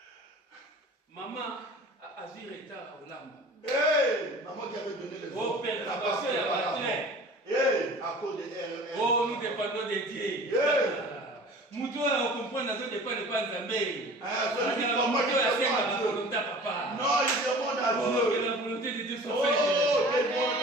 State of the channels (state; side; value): normal; both; correlation 0.43